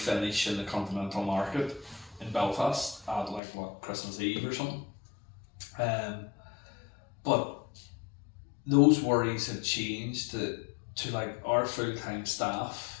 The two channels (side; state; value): right; drops out; at 3.4 s